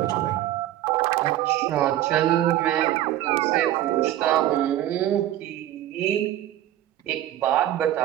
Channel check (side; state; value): left; quieter; 13.3 dB